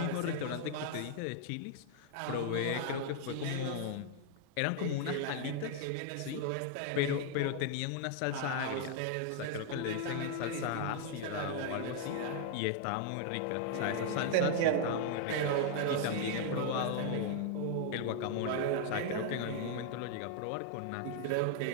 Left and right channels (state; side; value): different; both; correlation 0.00